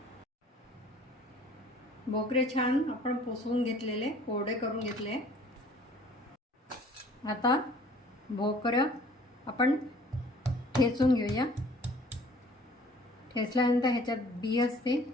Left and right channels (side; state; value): both; normal; correlation 0.52